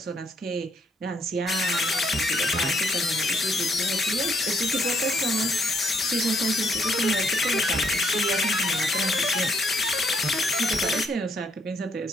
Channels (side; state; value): both; normal; correlation 0.71